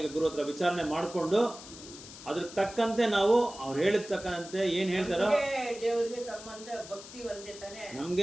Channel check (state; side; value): noise; left; hiss, 15 dB below the sound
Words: ಗುರು ಹತ್ರ ವಿಚಾರಣೆ ಮಾಡಿಕೊಂಡು ಅದ್ರ ತಕ್ಕಂತೆ ನಾವು ಅವ್ರು ಹೇಳಿದ ತಕ್ಕಂತೆ ಏನು ಹೇಳ್ತಾರೋ ದೇವರಿಗೆ ಸಂಬಂಧ ಭಕ್ತಿ ಒಂದೇ ತಾನೆ.